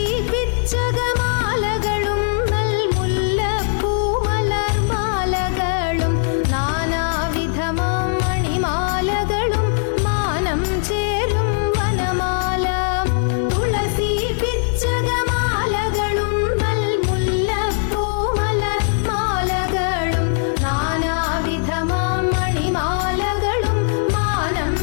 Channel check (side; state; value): right; silent; digital silence